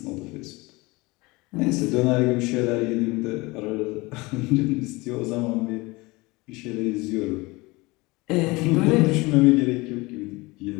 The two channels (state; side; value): quieter; right; 23.3 dB